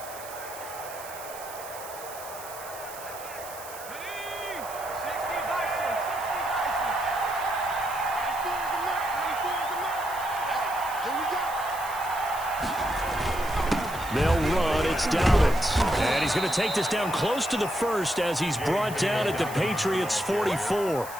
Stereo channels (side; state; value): right; noise; hiss, 14 dB below the sound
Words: They'll run. It's Dobbins. And he's going to take this down close to the 1st as he's brought down at the Patriots' 44.